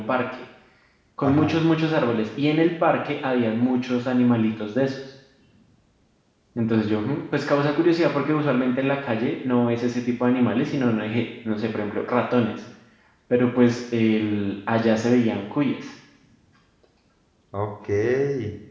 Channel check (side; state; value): both; identical; correlation 1.00